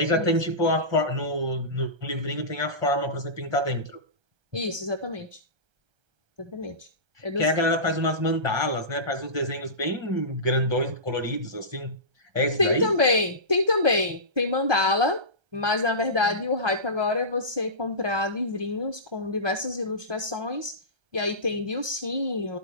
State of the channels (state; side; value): late; left; 1.3 ms